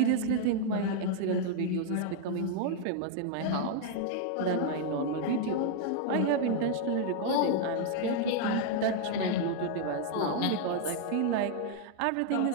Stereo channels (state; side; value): different; both; correlation 0.00